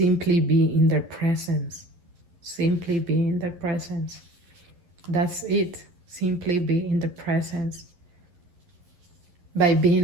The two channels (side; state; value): left; late; 11 ms